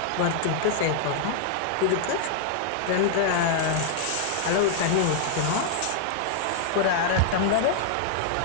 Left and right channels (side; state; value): both; different; correlation -0.01